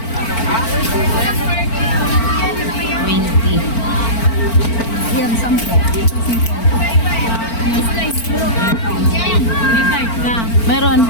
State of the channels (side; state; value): right; late; 4.4 ms